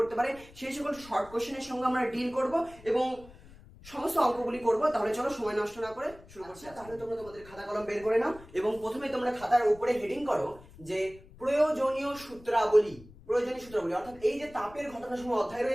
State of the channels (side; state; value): left; noise; rumble, 21 dB below the sound